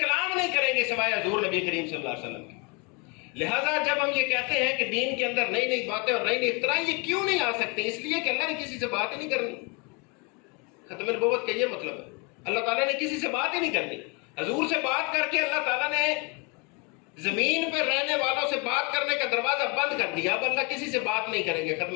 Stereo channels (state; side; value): quieter; right; 31.8 dB